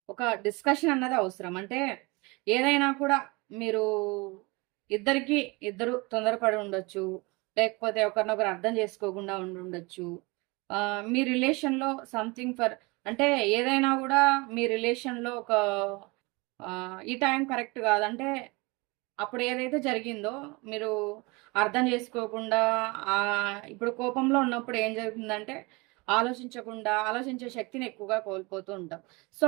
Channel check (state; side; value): quieter; left; 26.1 dB